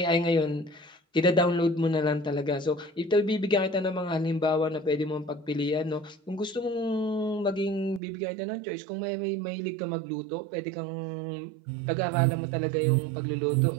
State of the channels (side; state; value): left; drops out; at 8.0 s